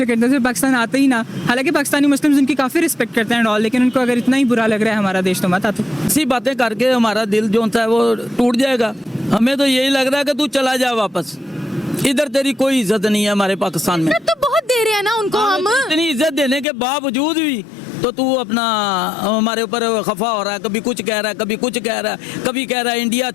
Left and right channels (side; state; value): right; drops out; at 16.7 s